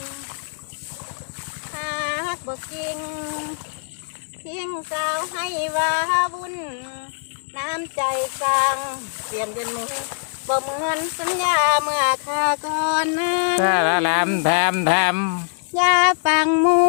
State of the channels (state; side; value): silent; right; digital silence